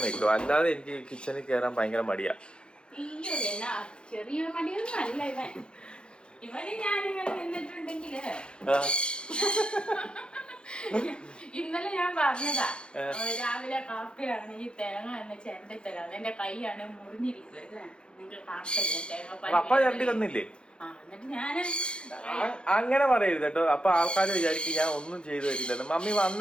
വെക്കും. അല്ലാതെ എനിക്ക് കിച്ചണിൽ കയറാൻ ഭയങ്കര മടിയാ. ചെറിയ മടിയൊന്നും അല്ല ഇവൻ. ഇവന് ഞാനിങ്ങനെ നിന്നിട്ടുണ്ടെങ്കില് ഇന്നലെ ഞാൻ പറഞ്ഞതാ, രാവിലെ കാപ്പിയാണ് ഈ തേങ്ങ എന്ന് ചേണ്ടി തരാം. എന്റെ കൈയാണ് മുറിഞ്ഞിരിക്കുന്നത്. നിങ്ങൾക്ക് കാണില്ലേ തേങ്ങ? അങ്ങനെ പറയരുത് കേട്ടോ. അപ്പൊ ആൾക്കാർ വിചാരിക്കും ഞാൻ ഒന്നും ചെയ്തു തരില്ലെന്ന്. മമ്മി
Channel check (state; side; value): late; right; 0.053 ms